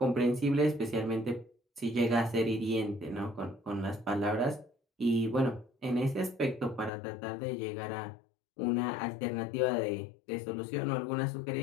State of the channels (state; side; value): drops out; right; at 6.9 s